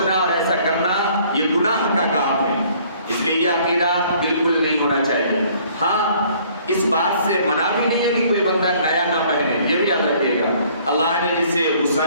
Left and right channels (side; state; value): both; inverted; correlation -0.58